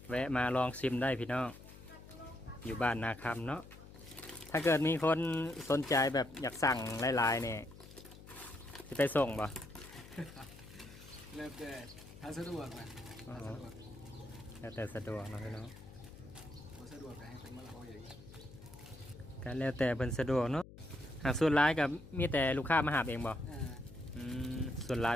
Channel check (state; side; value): noise; left; hum, 17 dB below the sound